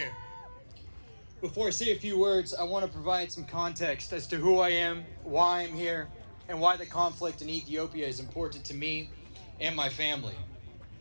Before I say a few words, I want to provide some context as to who I am, why I'm here, and why the conflict in Ethiopia is important to me and my family.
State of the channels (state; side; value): inverted; both; correlation -1.00